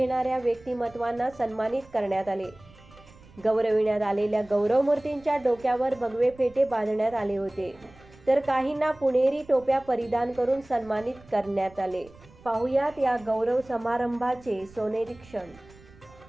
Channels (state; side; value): noise; right; rumble, 24 dB below the sound